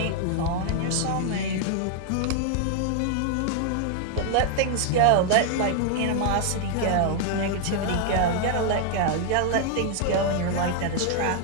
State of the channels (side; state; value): both; different; correlation 0.00